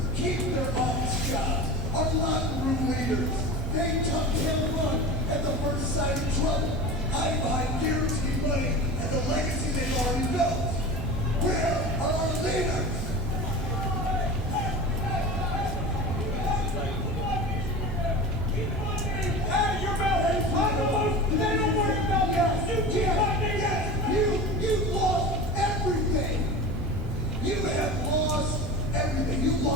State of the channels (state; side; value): noise; right; hum, 14 dB below the sound